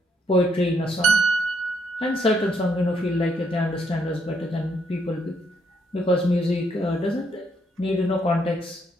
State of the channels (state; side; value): normal; both; correlation 0.74